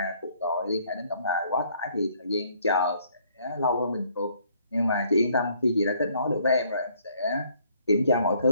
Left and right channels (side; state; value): both; inverted; correlation -0.64